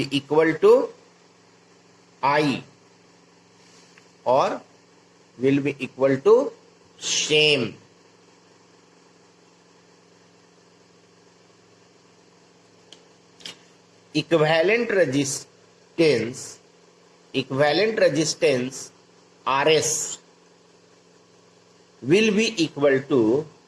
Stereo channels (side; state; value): both; identical; correlation 1.00